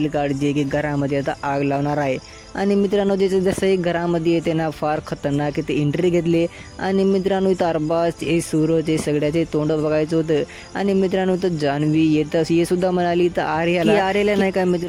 कार्ड जे की घरामध्ये आता आग लावणार आहे. आणि मित्रांनो, जसं एक घरामध्ये येते ना, फार खतरनाक ते एंट्री घेतली. आणि मित्रांनो, इथं अरबाज, हे सूरज, हे सगळ्याचे तोंड बघायचं होतं. आणि मित्रांनो, इथं जान्हवी येतं हे सुद्धा म्हणाली. तर आर्याला नाही का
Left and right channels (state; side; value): identical; both; correlation 1.00